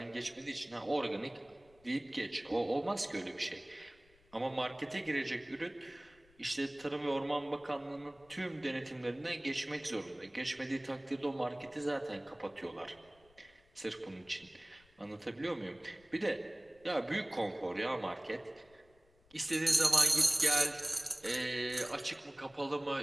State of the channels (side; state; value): left; noise; rumble, 30 dB below the sound